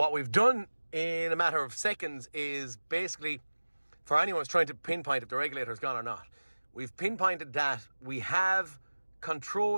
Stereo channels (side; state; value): both; inverted; correlation -1.00